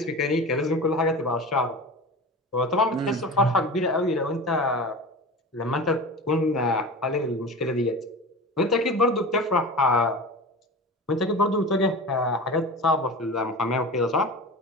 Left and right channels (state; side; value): normal; both; correlation 0.31